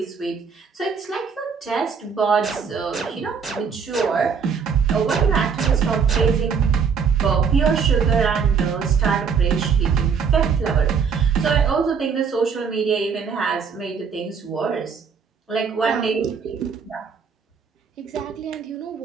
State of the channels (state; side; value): quieter; left; 6.2 dB